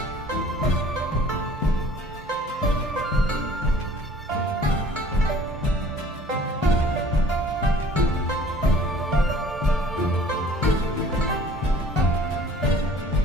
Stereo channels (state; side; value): normal; both; correlation 0.52